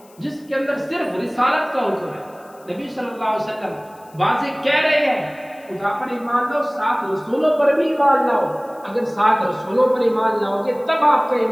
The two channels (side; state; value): left; noise; hiss, 28 dB below the sound